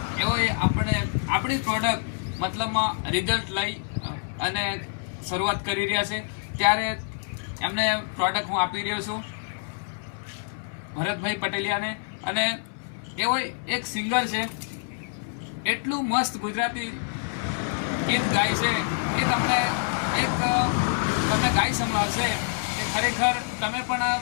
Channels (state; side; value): silent; right; 60 dB below the other